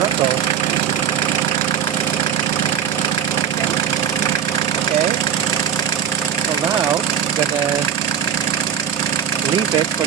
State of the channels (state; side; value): quieter; left; 8.4 dB